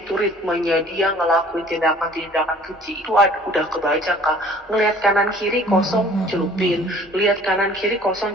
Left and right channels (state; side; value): normal; both; correlation 0.52